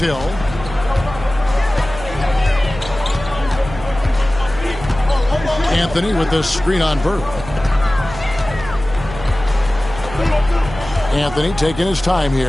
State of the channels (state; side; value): noise; right; hum, 13 dB below the sound